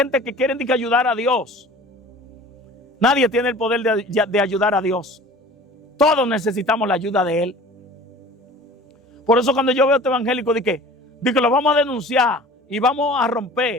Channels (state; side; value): normal; both; correlation 0.43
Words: que quiere ayudar a Dios. Nadie tiene el poder de ayudar a Dios. Todos necesitamos la ayuda de Él. Por eso cuando yo veo a este evangélico, de que lo vamos a denunciar y vamos a